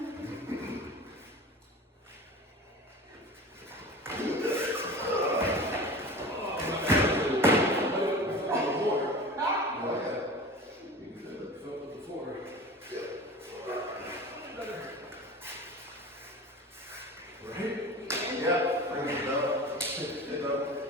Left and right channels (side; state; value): both; normal; correlation 0.35